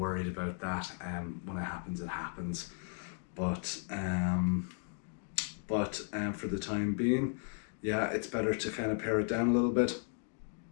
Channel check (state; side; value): silent; right; 54 dB below the other